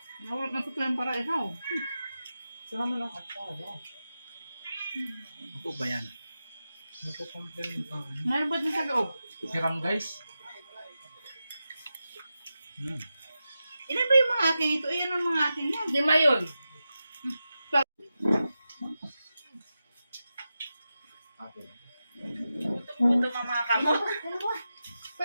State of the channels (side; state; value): both; inverted; correlation -0.91